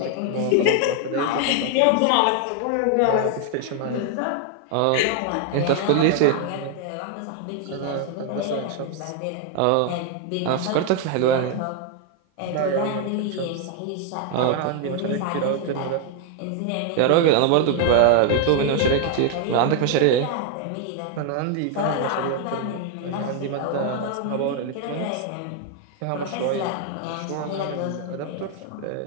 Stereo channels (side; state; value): both; different; correlation 0.00